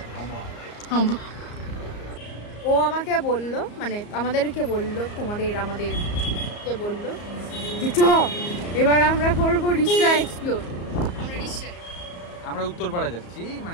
ও আমাকে বললো, মানে আমাদেরকে বললো, আমাদেরকে বললো যে চ এবার আমরা করবো রিসরা এক্সপ্লোর। আমরা উত্তরপাড়া যাচ্ছি,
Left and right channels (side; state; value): right; late; 34 ms